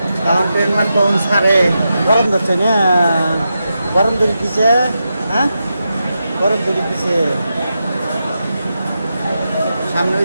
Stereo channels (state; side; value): inverted; both; correlation -0.88